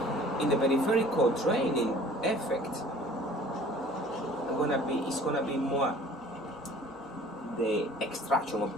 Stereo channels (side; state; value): both; normal; correlation 0.49